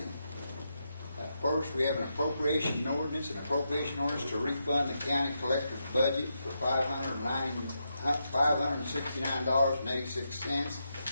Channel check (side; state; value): both; inverted; correlation -0.84